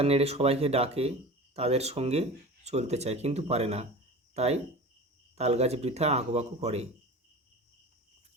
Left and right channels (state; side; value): normal; both; correlation 0.34